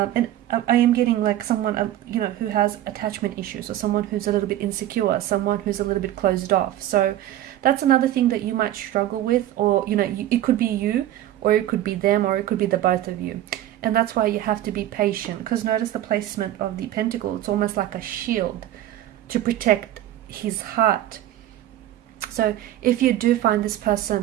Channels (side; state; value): left; quieter; 13.2 dB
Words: I am getting like someone, who has attachment issues, or someone who's a little bit insecure, someone who's a little bit closed off. So that's another thing that you might struggle with, or, it could be you, or it could be them, or it could be the both of you. And that's why you have to be patient, because notice the placement of the pentacle. It's almost like a shield to protect his heart. So if you do find this